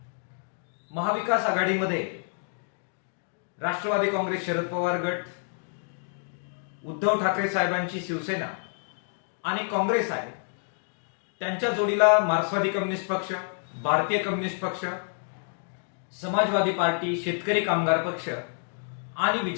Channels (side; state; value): right; silent; 59 dB below the other